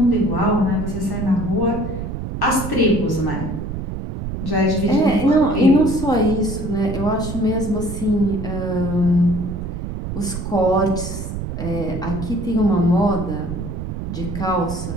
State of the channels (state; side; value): noise; right; rumble, 6 dB below the sound